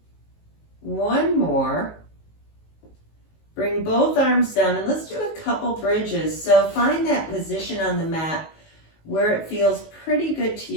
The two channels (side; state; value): right; late; 19 ms